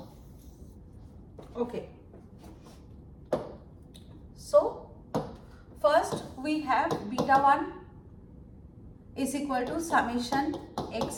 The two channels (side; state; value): both; identical; correlation 1.00